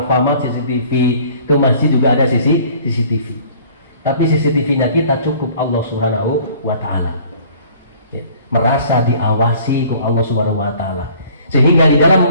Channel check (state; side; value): inverted; both; correlation -0.52